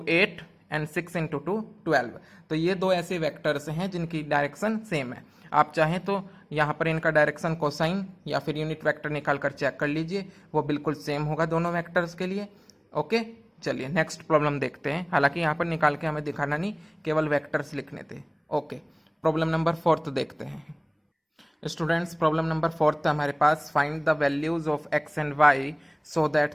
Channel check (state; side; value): identical; both; correlation 1.00